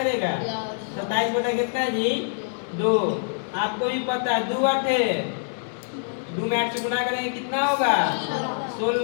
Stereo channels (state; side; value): silent; right; digital silence